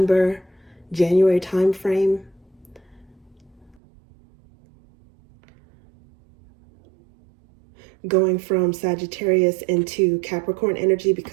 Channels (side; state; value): left; drops out; at 3.8 s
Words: January time frame. Going from Sagittarius into Capricorn energy,